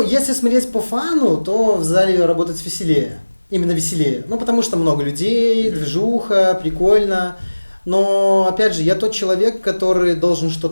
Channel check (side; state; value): both; inverted; correlation -1.00